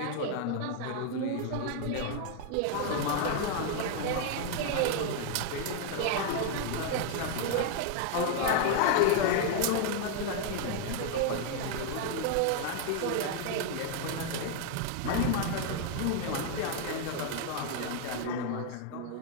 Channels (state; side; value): different; both; correlation 0.00